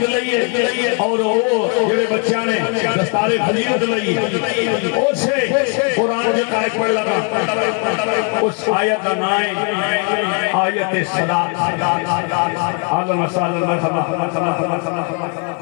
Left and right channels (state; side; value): quieter; right; 37.7 dB